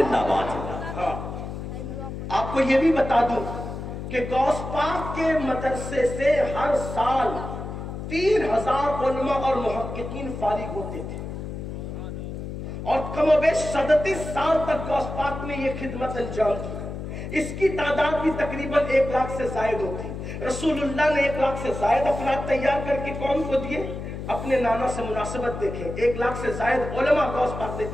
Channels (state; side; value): noise; left; hum, 7 dB below the sound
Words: باد. ہاں آپ کو یہ بھی بتا دوں کہ غوث پاک کے مدرسے سے ہر سال 3000 علماء اور محققین فارغ ہوتے تھے, اور کم و بیش 37 سال تک غوث پاک نے یہ خدمت انجام دی. اس کی تعداد بھی تقریباً 1 لاکھ سے زائد ہوتی. رسول اللہ نے 1 لاکھ سے زائد افراد تیار کر کے قوم کو دیے. اپنے نانا سے مناسبت دیکھیں, 1 لاکھ سے زائد علماء غوث پاک نے